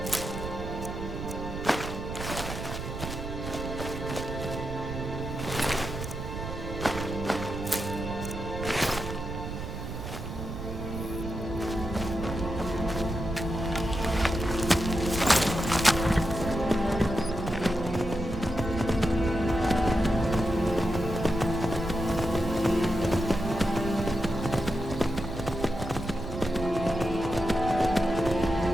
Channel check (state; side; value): noise; right; rumble, 7 dB below the sound